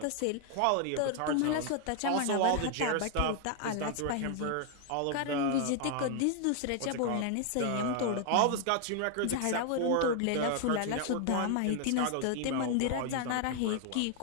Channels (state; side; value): different; both; correlation 0.00